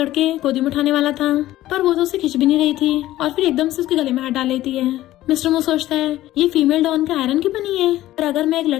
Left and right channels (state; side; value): quieter; right; 15.0 dB